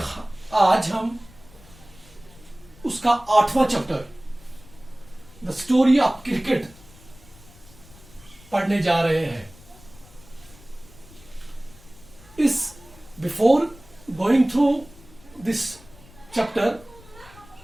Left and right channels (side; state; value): left; noise; rumble, 23 dB below the sound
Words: आज हम उसका 8वां chapter the story of cricket पढ़ने जा रहे हैं। इस before going through this chapter,